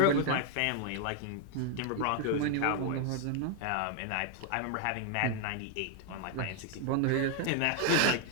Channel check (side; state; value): both; different; correlation 0.00